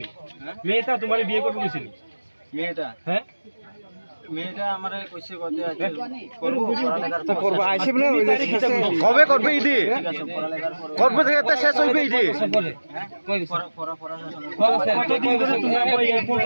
মেয়েটা তোমারে বিয়ে করব কইছিনি মেয়েটা হ্যাঁ মেয়েটা আমারে কইছে কতে আছে করব পড়ালেখার তো করব আইছে বলে কবে করবে ইদি করবে থেকে তো শেষ হইবে ইদি কতদিন ধরে তোমার এয়ারপোর্ট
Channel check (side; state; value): both; inverted; correlation -1.00